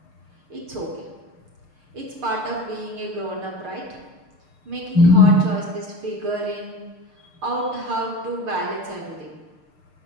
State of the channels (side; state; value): left; late; 6.6 ms